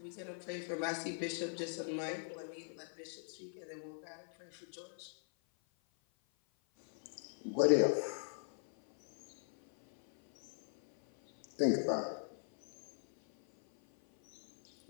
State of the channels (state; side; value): silent; right; 51 dB below the other